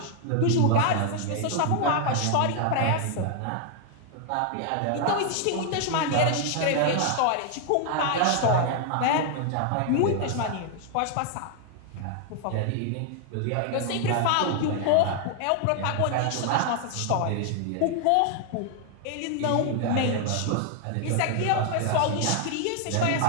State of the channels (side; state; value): both; different; correlation 0.00